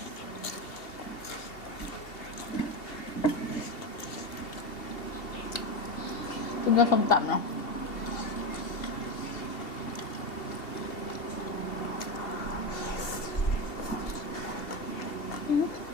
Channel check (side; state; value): right; late; 2.7 ms